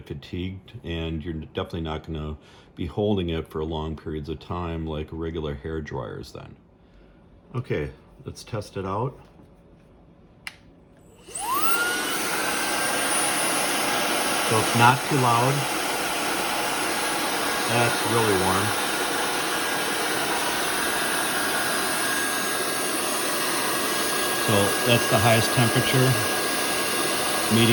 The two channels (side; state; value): both; identical; correlation 1.00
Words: fatigued, and you're definitely not going to be holding it for long periods of time like regular hair dryers then. Okay, let's test it out. So it's not too loud. That's really warm. So that's the highest temperature,